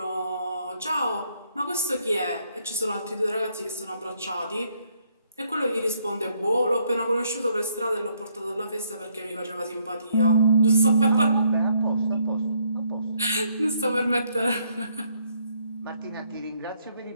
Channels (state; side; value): inverted; both; correlation -0.70